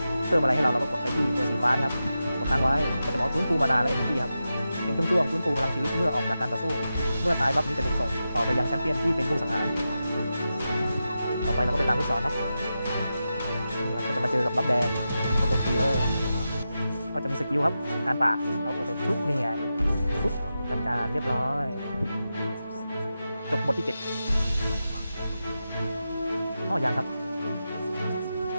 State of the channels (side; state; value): both; inverted; correlation -0.90